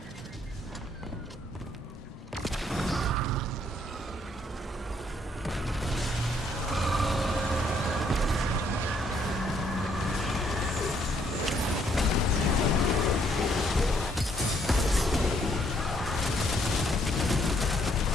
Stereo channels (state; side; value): normal; both; correlation 0.69